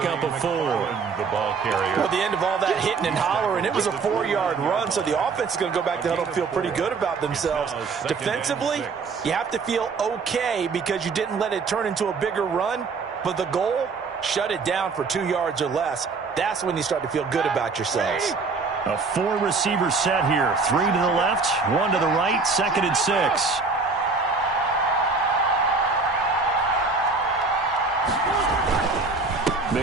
of 4. The ball carrier. Well, the end of all that hitting and hollering, it was a 4-yard run, so the offense is going to go back to huddle and feel pretty good about themselves. Defensively, you have to feel okay because you didn't let it turn into a bigger run, but the goal, shut it down for 2 yards or less. That's when you start to feel good about yourselves. A 4-receiver set here. 3 to the left, 1 to the right, 2nd and 6.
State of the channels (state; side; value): quieter; left; 4.4 dB